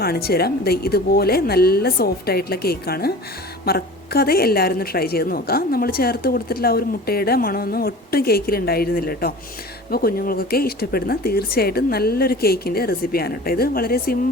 തരാം. ഇതുപോലെ നല്ല സോഫ്റ്റ് ആയിട്ടുള്ള കേക്കാണ്. മറക്കാതെ എല്ലാവരും ഒന്ന് ട്രൈ ചെയ്ത് നോക്കാം. നമ്മൾ ചേർത്ത് കൊടുത്തിട്ടുള്ള ആ ഒരു മുട്ടയുടെ മണമൊന്നും ഒട്ടും കേക്കിൽ ഉണ്ടായിരുന്നില്ല കേട്ടോ. അപ്പോൾ കുഞ്ഞുങ്ങൾക്കൊക്കെ ഇഷ്ടപ്പെടുന്ന തീർച്ചയായിട്ടും നല്ലൊരു കേക്കിൻ്റെ റെസിപ്പിയാണ് കേട്ടോ. ഇത് വളരെ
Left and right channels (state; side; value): normal; both; correlation 0.39